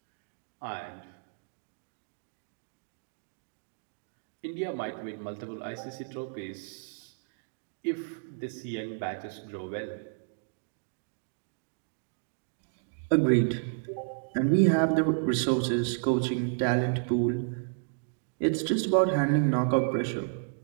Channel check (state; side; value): silent; left; digital silence